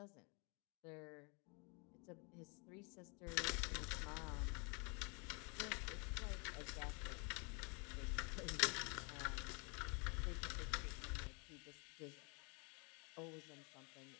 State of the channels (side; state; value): right; quieter; 32.5 dB